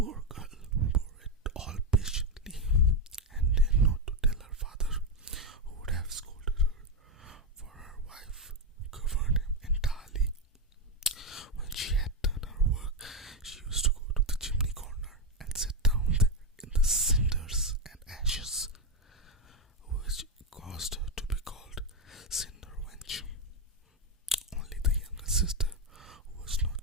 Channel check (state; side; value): normal; both; correlation 0.06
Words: girl bore it all patiently, and dared not to tell her father, who would have scolded her, for her wife governed him entirely. When she had done her work, she used to go to the chimney corner and sit down there in the cinders and ashes, which caused her to be called Cinder Wench. Only the younger sister, who was